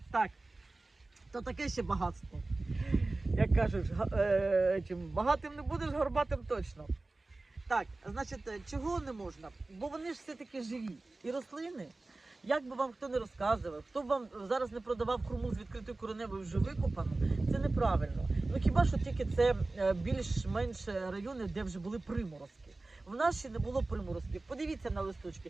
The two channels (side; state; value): left; quieter; 3.2 dB